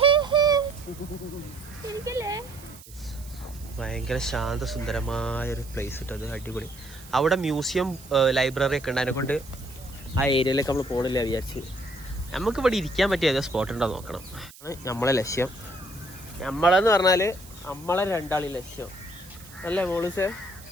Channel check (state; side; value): noise; right; hiss, 20 dB below the sound